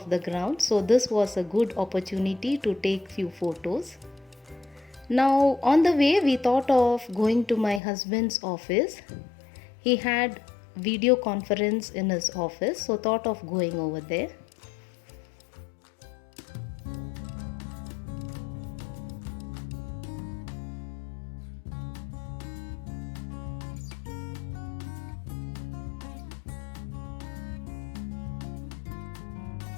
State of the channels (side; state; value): right; drops out; at 7.8 s